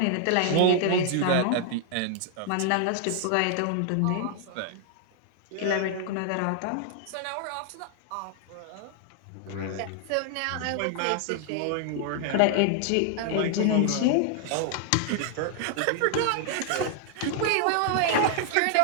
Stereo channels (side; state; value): both; different; correlation 0.00